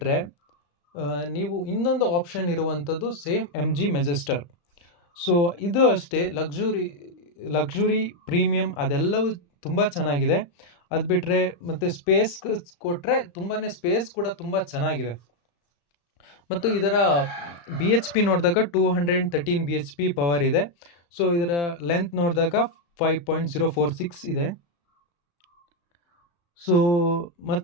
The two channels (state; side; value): late; right; 35 ms